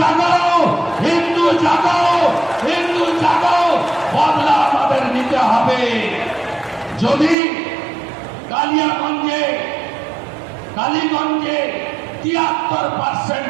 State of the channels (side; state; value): left; drops out; at 7.4 s